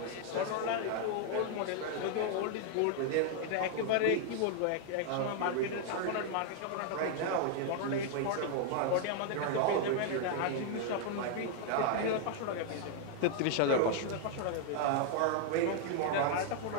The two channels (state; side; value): different; both; correlation 0.00